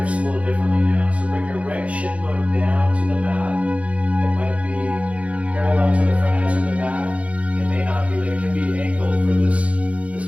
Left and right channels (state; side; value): late; left; 0.064 ms